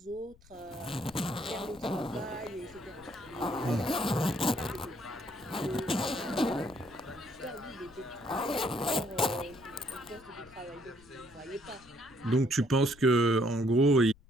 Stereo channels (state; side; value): noise; left; rumble, 25 dB below the sound